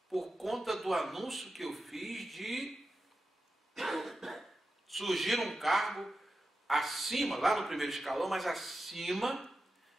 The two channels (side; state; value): both; normal; correlation 0.92